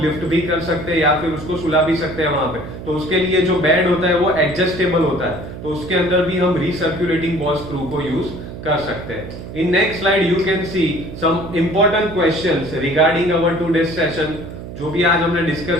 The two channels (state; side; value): noise; right; hum, 11 dB below the sound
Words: लिफ्ट भी कर सकते हैं या फिर उसको सुला भी सकते हैं वहां पे, तो उसके लिए जो बेड होता है वो एडजस्टेबल होता है, तो उसके अंदर भी हम रिसर्कुलेटिंग बॉल स्क्रू को यूज कर सकते हैं। In next slide you can see some important questions regarding our today's session. जो भी आज हमने